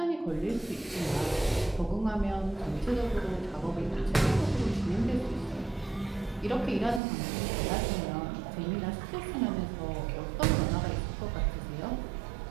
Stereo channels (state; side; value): drops out; left; at 7.0 s